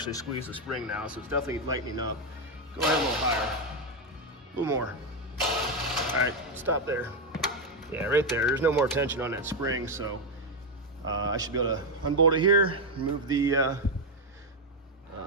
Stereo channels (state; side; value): normal; both; correlation 0.05